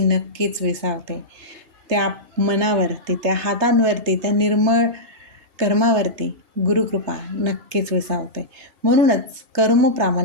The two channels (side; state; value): left; late; 3.2 ms